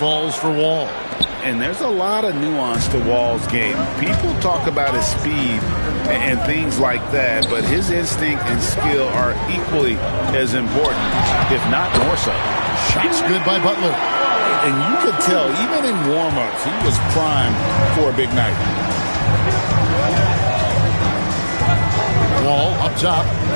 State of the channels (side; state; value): both; inverted; correlation -1.00